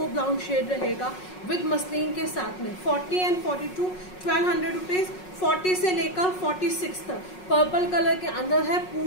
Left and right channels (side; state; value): right; late; 5.5 ms